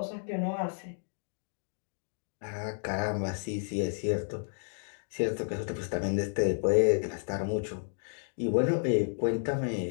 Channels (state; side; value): silent; right; digital silence